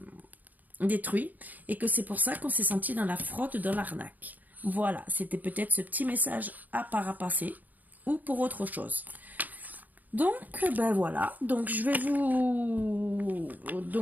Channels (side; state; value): left; late; 0.082 ms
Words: détruits, et que c'est pour ça qu'on s'est senti dans la fraude, dans l'arnaque. Voilà, c'était peut-être ce petit message à parapasser, ou pour autre chose. Donc, voilà. Donc,